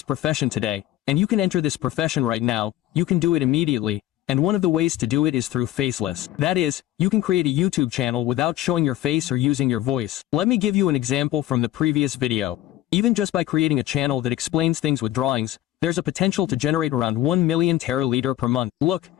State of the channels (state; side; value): quieter; right; 14.1 dB